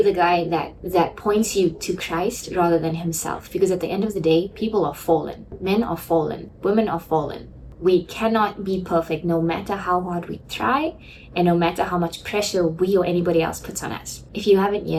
the guy that points you to Christ rather than himself. Because at the end of the day, people are fallen. Men are fallen. Women are fallen. We cannot be perfect no matter how hard we try and no matter how much pressure we or anybody else puts on us. If you haven't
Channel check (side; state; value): both; identical; correlation 1.00